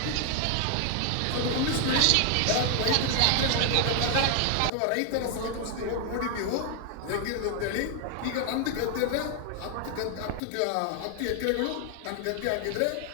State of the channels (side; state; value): both; different; correlation 0.00